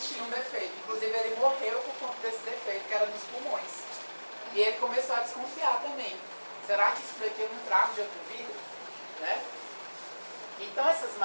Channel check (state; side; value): inverted; both; correlation -1.00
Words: um defeito. Inclusive, ele morreu por conta desse defeito, que era nos pulmões. E ele começou a desconfiar também. Será que isso daqui eu não trago de outra vida? Né? Então, essas